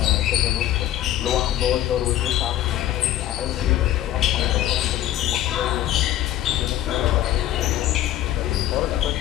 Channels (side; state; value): right; quieter; 12.9 dB